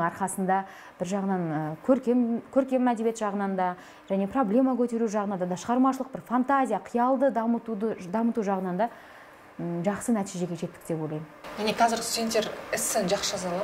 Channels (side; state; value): both; identical; correlation 1.00